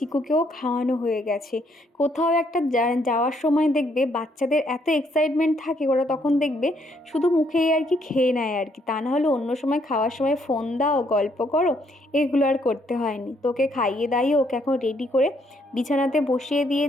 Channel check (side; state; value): both; normal; correlation 0.71